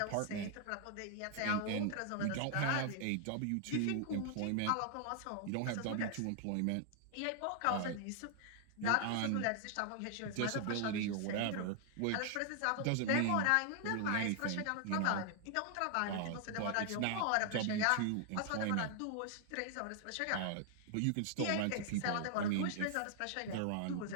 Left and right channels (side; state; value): both; different; correlation 0.00